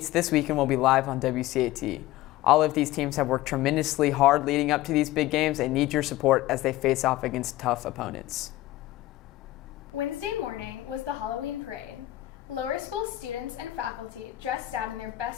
this weekend will be live on WCAT. All of these teams have worked tremendously hard leading up to these big games and need your support as they face off against tough opponents. Wednesday morning was the Halloween parade. Lower school students and faculty dressed out in their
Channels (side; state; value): right; quieter; 16.3 dB